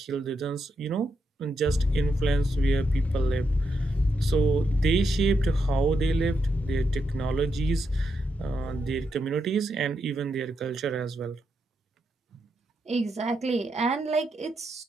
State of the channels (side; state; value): both; normal; correlation 0.83